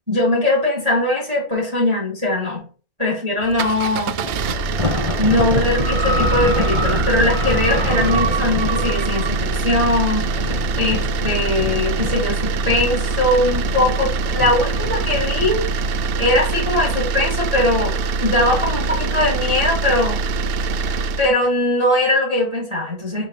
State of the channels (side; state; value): left; late; 2.7 ms